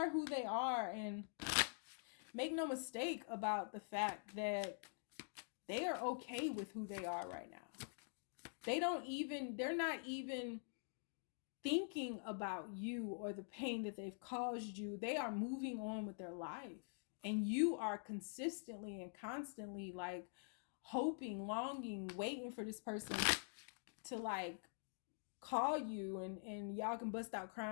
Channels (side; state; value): right; silent; digital silence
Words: who they are. And make no mistake about the fact that they are okay with who they are right now. They're not even thinking about you or the pain that they've caused you. They are moving on with their life. And you are consistently and constantly like hoping, longing, waiting for this person to like call you and y'all can bust out